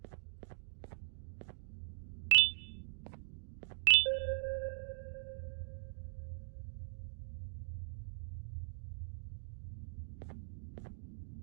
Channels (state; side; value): silent; left; digital silence